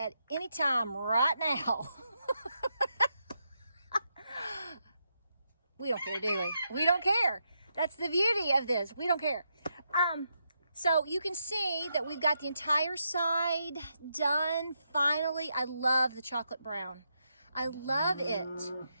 any time right now. We don't care, do we? We don't care. That's the beauty of this. We don't care. So you can see that we've got the entire side done. Finally, I love the chocolate brown. I love it.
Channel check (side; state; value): both; inverted; correlation -0.82